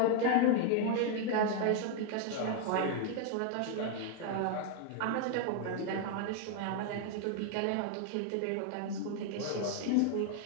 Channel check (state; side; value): different; both; correlation 0.00